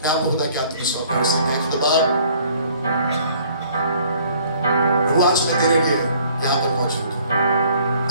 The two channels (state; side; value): inverted; both; correlation -0.58